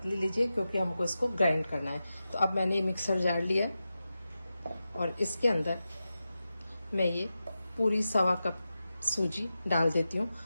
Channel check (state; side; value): inverted; both; correlation -0.92